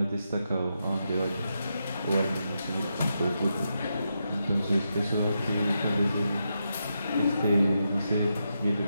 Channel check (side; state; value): both; inverted; correlation -0.84